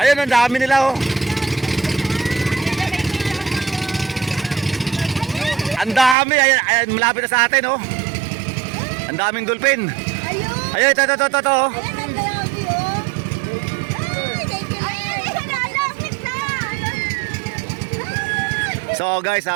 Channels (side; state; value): left; drops out; at 6.2 s